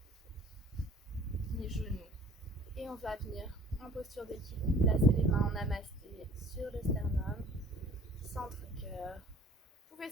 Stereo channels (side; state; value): both; normal; correlation 0.51